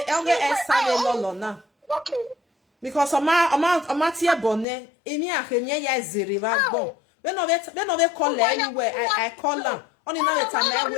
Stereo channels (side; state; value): right; drops out; at 4.7 s